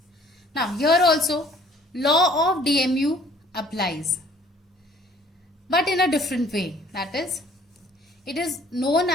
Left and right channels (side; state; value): both; normal; correlation 0.57